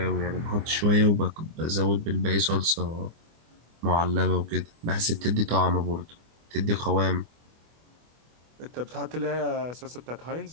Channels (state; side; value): late; left; 24 ms